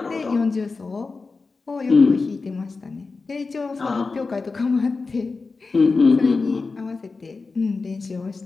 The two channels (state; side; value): quieter; right; 4.1 dB